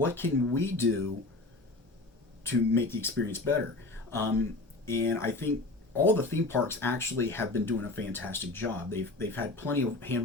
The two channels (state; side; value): quieter; right; 3.0 dB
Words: can we do to make the experience better? And I think all the theme parks actually have been doing a fantastic job. They've had plenty of